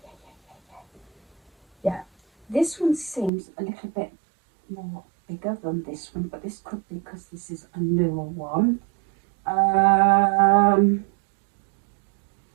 Yeah, this one seems a little bit more bigger than this one, but this could be because this is a newer one.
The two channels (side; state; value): left; drops out; at 3.3 s